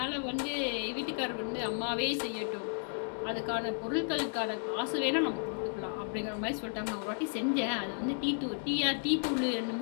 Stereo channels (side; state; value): right; silent; 55 dB below the other